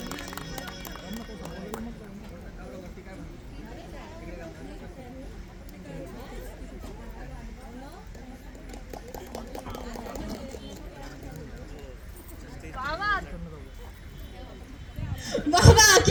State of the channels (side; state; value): both; identical; correlation 1.00